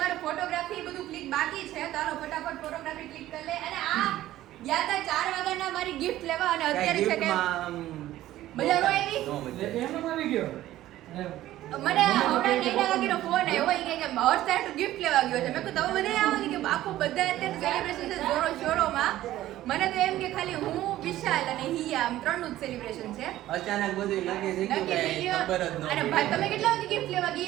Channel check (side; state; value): left; quieter; 14.4 dB